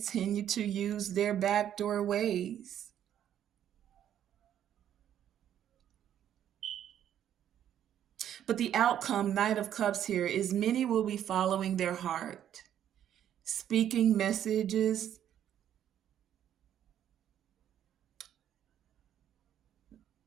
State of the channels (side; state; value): left; quieter; 10.4 dB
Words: to use their backdoor ways. But the outcome, Knight of Cups here, is many will be following their heart, speaking messages